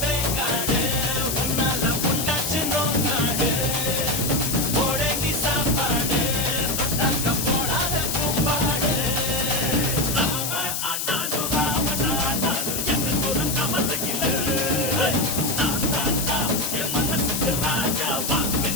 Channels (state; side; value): noise; left; hiss, 2 dB below the sound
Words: வேங்காடு உன்னால புண்டாச்சு நோக்காடு போடங்கி சாப்பாடு தொட்டாக்க போடாத கூப்பாடு ராம ஆண்டாலும் ராவண ஆண்டாலும் எனக்கு ஒரு கவலையில் என் மனசுக்கு ராஜா வாக்கு